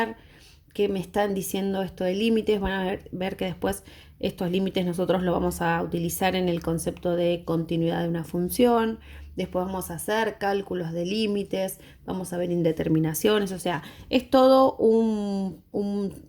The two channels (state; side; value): identical; both; correlation 1.00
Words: qué me están diciendo esto de límites, van a ver que después estos límites nosotros lo vamos a utilizar en el concepto de continuidad de una función, después vamos a hacer cálculos de límites, vamos a ver indeterminaciones, o sea, es todo un